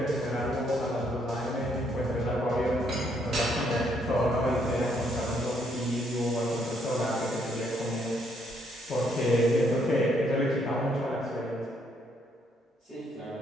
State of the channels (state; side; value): normal; both; correlation 0.71